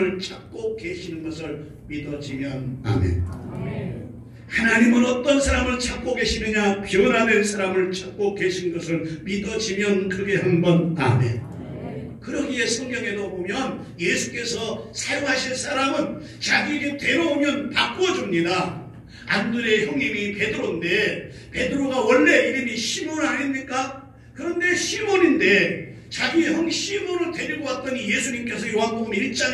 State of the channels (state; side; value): identical; both; correlation 1.00